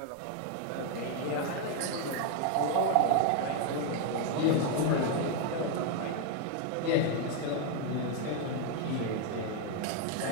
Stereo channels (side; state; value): both; different; correlation 0.01